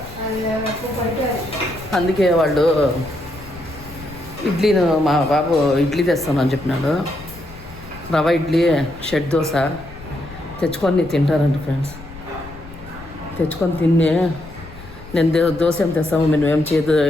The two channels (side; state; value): left; noise; rumble, 17 dB below the sound